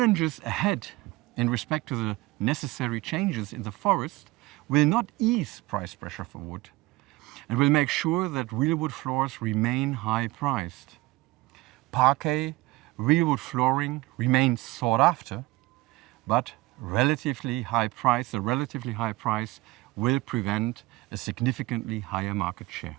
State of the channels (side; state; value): left; quieter; 20.6 dB